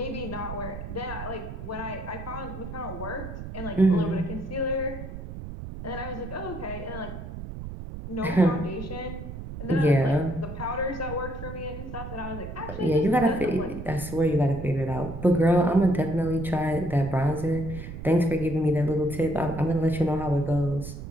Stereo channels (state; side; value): noise; right; rumble, 9 dB below the sound